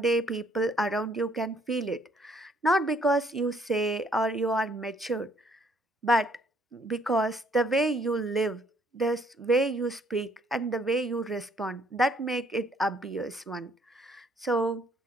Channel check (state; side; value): normal; both; correlation 0.65